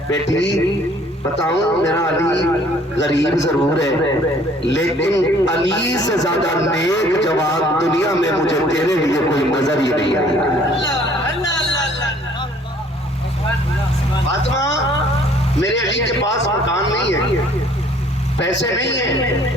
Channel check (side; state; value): both; normal; correlation 0.58